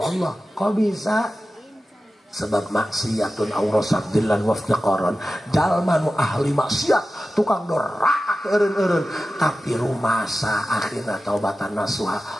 Allah kok bisa sebab maksiatun aurasat dillan waftiqaron jalma nu ahli maksiat tukang doraka eureun-eureun, tapi rumasa akhirna taubatan nasuha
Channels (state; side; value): normal; both; correlation 0.94